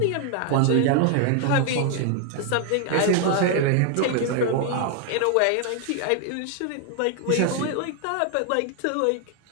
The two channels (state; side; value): different; both; correlation 0.00